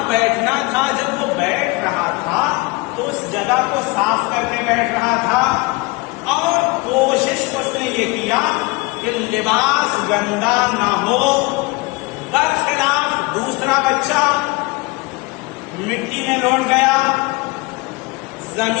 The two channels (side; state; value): right; quieter; 25.2 dB